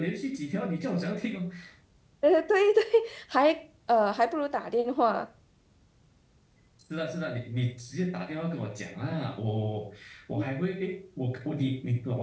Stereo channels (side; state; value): both; identical; correlation 1.00